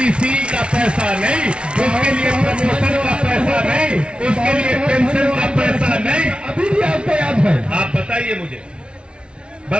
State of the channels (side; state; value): left; late; 0.058 ms